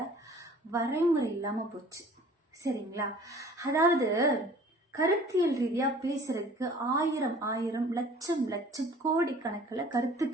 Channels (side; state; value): both; normal; correlation 0.49